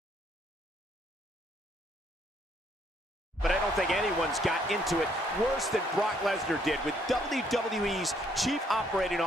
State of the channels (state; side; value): normal; both; correlation 0.68